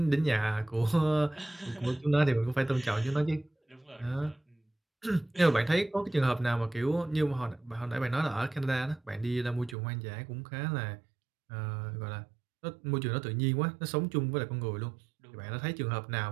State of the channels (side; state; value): left; drops out; at 9.8 s